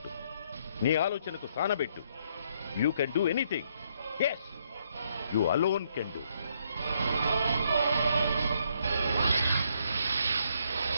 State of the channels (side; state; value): both; inverted; correlation -0.72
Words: నీ ఆలోచనకు సానబెట్టు. You can do anything. Yes, you alone can do.